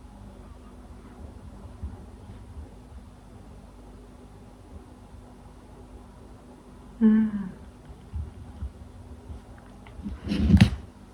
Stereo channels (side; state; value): both; identical; correlation 1.00